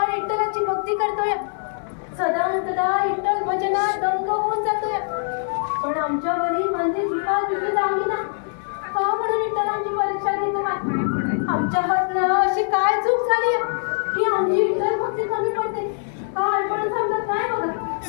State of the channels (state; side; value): silent; right; digital silence